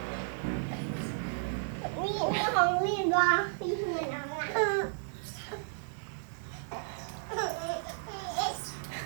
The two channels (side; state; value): left; silent; digital silence